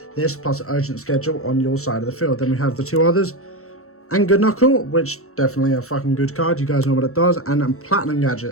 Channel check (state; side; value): late; right; 0.63 ms